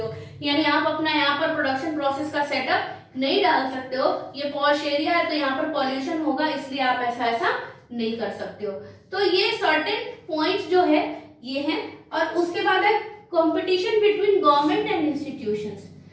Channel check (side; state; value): both; identical; correlation 1.00